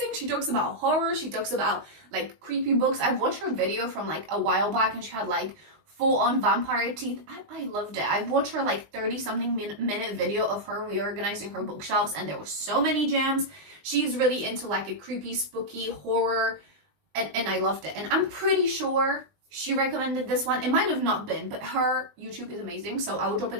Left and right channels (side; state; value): left; late; 20 ms